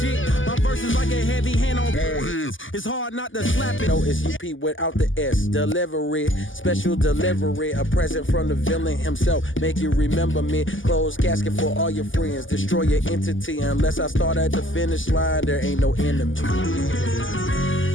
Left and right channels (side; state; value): right; late; 0.57 ms